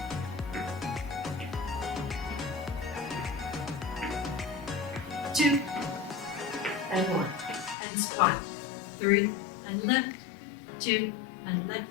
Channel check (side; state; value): right; drops out; at 7.8 s